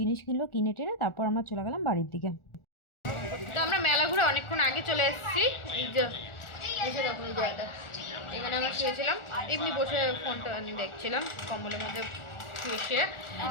কিনলো, কিনে টেনে তারপর আমরা চলে গেলাম বাড়ির দিকে। তো আমরা মেলা ঘুরে অনেকক্ষণ আগে চলে এসেছি। এই যে এসে দেখো এই জায়গাটা, এখানে আমরা শুয়েছিলাম, এমনি বসে ফোনটা দেখছিলাম কম্বলের মধ্যে শুয়ে।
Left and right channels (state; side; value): late; right; 1.4 ms